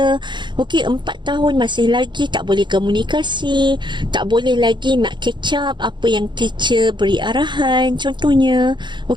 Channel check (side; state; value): left; late; 0.22 ms